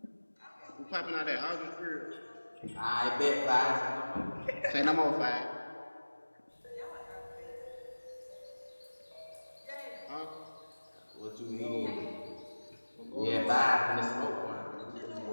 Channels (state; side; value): inverted; both; correlation -1.00